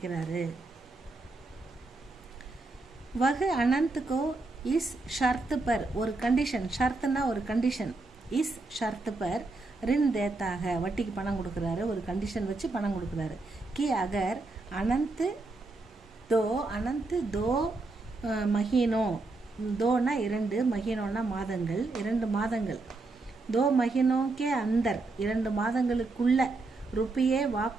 வகு அனந்த்கோ இஸ் ஷர்த்து பர், ஒரு கண்டிஷன், ஷர்த்துனா ஒரு கண்டிஷன், இஸ் ஷர்த்து பர் ரின் தேத்தாக, வட்டிக்கு பணம் கொடுக்குறாரு, ஒரு கண்டிஷன் வச்சு பணம் கொடுக்குறாரு. கி அகர் அனந்த் தோ மஹீனோ, தோனா 2, மஹீனோனா மாதங்கள், 2 மாதங்கள், தோ மஹீனோக்கே அந்தர் 2 மாதங்களுக்குள்ள ருப்பியே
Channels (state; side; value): quieter; left; 3.3 dB